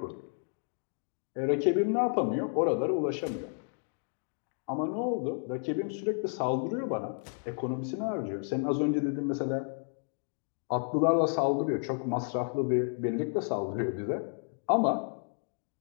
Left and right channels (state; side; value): silent; right; 57 dB below the other